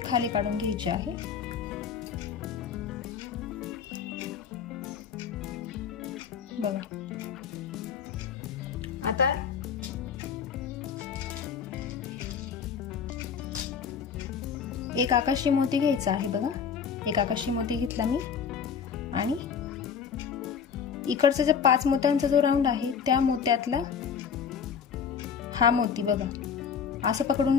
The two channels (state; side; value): quieter; right; 6.9 dB